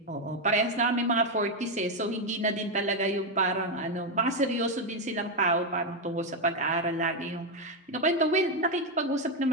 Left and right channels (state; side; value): normal; both; correlation 0.05